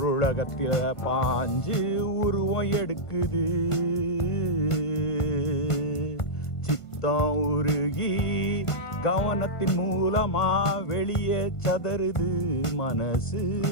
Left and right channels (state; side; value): late; right; 1.5 ms